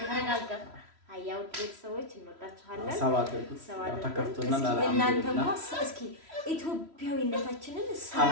ተረጋጋ። አያው ቤተሰቦች እንወዳችኋለን። ሰባት ተከፍቶና እናንተም እስኪ ኢትዮጵያዊነታችንን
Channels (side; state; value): left; late; 3.0 ms